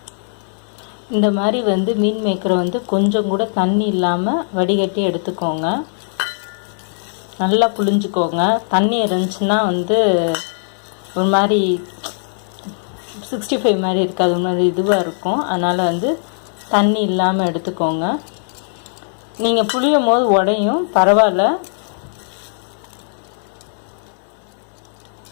இந்த மாதிரி வந்து மீன் மேக்கரை வந்து கொஞ்சம் கூட தண்ணி இல்லாமல் வடிகட்டி எடுத்துக்கோங்க. நல்லா புழிஞ்சுக்கோங்க. தண்ணி இருந்துச்சுன்னா வந்து ஒரு மாதிரி 65 மாதிரி இருக்காது, ஒரு மாதிரி இதுவாக இருக்கும். அதனால் வந்து தண்ணி இல்லாமல் எடுத்துக்கோங்க. நீங்கள் புளியும் போது உடையும், பரவாயில்ல.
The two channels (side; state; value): right; silent; 67 dB below the other